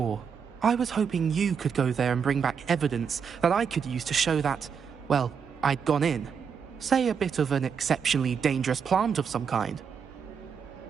I was hoping you could go there and bring back evidence that I could use to show that, well, I'd gone in. Say a bit of an exceptionally dangerous plant of some kind.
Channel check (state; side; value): quieter; left; 6.7 dB